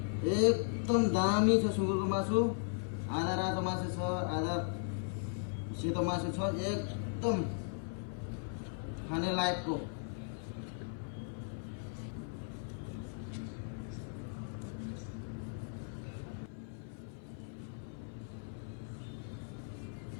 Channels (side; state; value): right; silent; 53 dB below the other